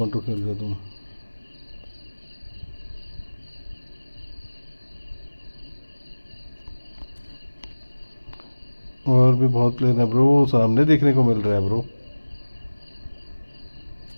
खेल रहे हो तुम। और भी बहुत प्लेयर है ब्रो, सामने देखने को मिल रहा है ब्रो।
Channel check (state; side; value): inverted; both; correlation -1.00